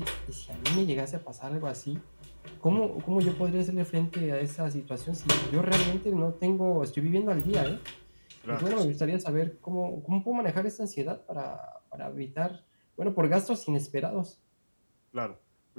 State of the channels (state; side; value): inverted; both; correlation -1.00